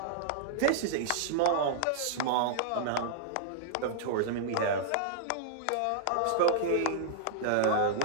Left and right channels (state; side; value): different; both; correlation -0.02